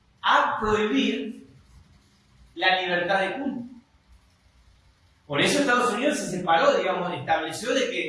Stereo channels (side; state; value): both; identical; correlation 1.00